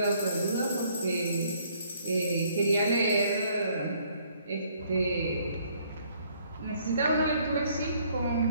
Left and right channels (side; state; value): both; inverted; correlation -0.64